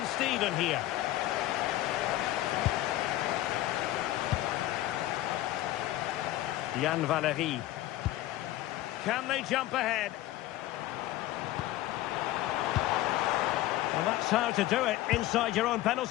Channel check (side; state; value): right; quieter; 15.4 dB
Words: Steven here. Jan Valery. Can they jump ahead? Well, that's how to do it, inside your own